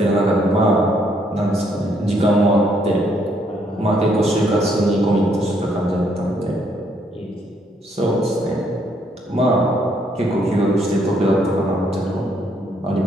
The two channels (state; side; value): normal; both; correlation 0.70